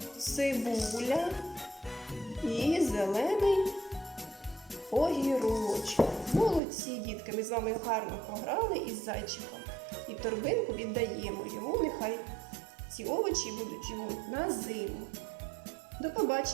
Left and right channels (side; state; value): left; drops out; at 6.6 s